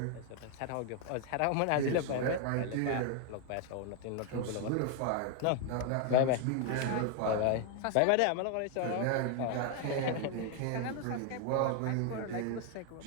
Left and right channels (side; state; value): both; different; correlation 0.01